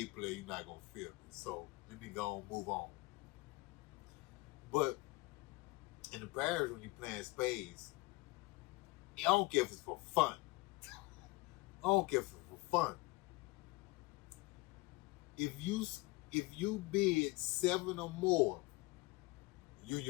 player, you're not going to feel me. So let me go and move on. But in the parish, when you're playing you don't care if it's for fun. I don't care if it's for fun. If you bid 7 or more, you and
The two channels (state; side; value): quieter; right; 23.7 dB